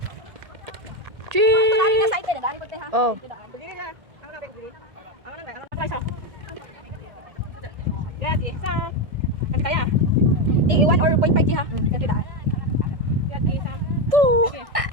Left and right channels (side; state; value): left; late; 1.6 ms